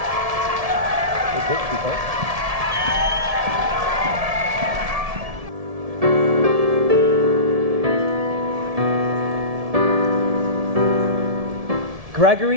Good. Keep going.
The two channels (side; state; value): left; late; 1.7 ms